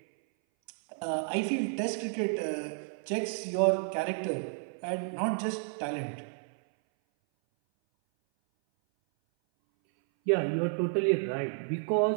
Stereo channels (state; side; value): silent; left; 57 dB below the other